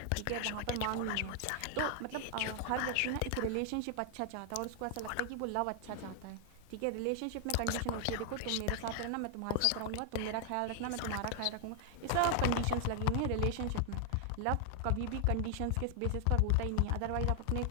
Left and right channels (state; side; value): different; both; correlation 0.00